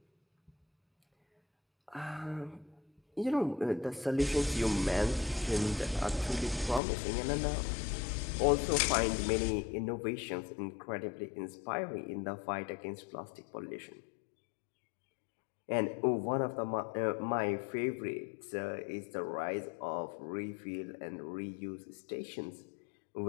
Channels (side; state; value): right; drops out; at 6.8 s